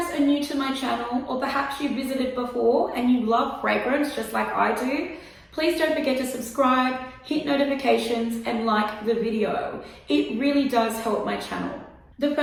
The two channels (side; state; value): both; identical; correlation 1.00